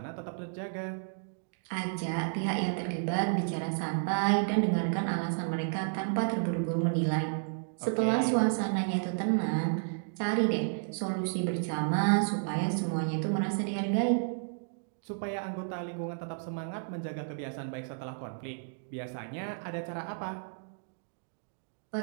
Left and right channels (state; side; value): silent; left; digital silence